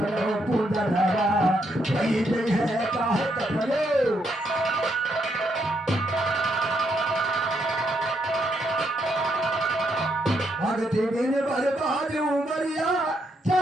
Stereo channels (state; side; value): normal; both; correlation 0.76